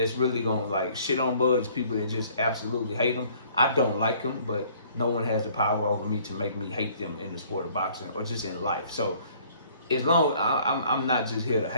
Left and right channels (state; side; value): inverted; both; correlation -0.57